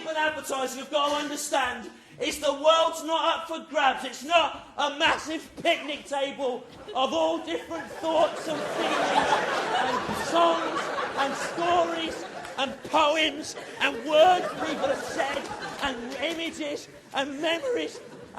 in advertising have got to understand is the world's not up for grabs. It's not a massive picnic table of all different thoughts and feelings and songs and stories and poems and words people have said and images and memories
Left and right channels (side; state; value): both; identical; correlation 1.00